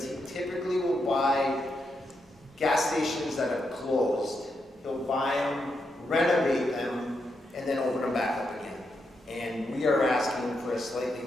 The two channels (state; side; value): normal; both; correlation 0.83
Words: he typically will buy gas stations that are closed. He'll buy them, renovate them, and then open them back up again. And we are asking for a